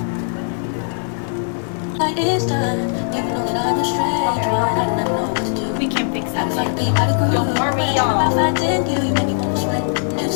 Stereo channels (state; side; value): silent; right; digital silence